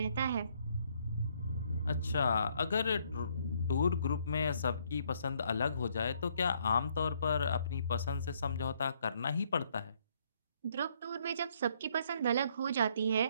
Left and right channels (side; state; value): both; inverted; correlation -0.68